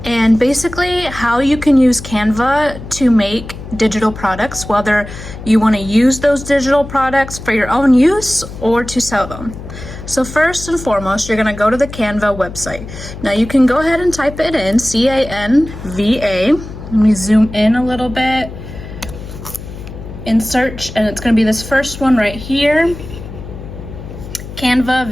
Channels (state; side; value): noise; left; hum, 12 dB below the sound